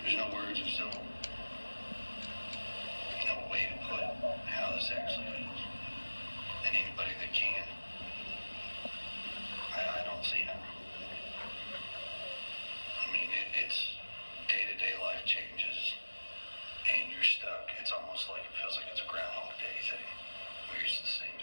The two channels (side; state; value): both; inverted; correlation -1.00